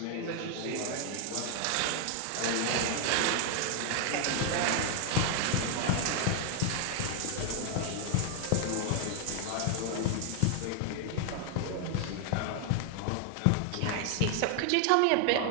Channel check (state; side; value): different; both; correlation 0.00